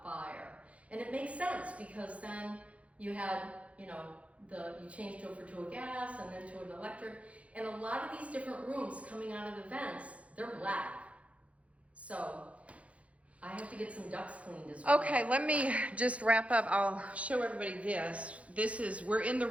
fire. And it makes sense, because then you had, you changed over to a gas and then to an electric. And a lot of these different rooms coming out of the vents, they're black. So I have to get some ducks cleaned as well. Okay, let me just wrap up. I'll show everybody this. We're in the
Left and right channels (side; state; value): left; late; 0.064 ms